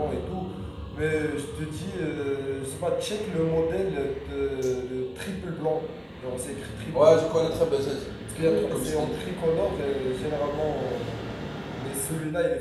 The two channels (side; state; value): both; identical; correlation 1.00